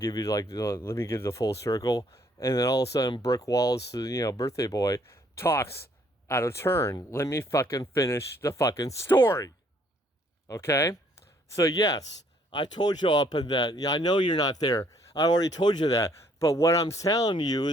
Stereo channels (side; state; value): both; normal; correlation 0.65